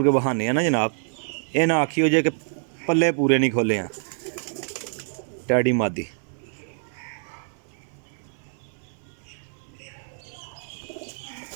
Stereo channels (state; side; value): silent; left; 61 dB below the other